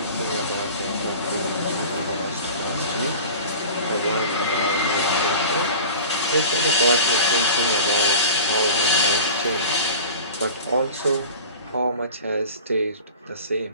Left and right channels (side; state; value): both; inverted; correlation -0.37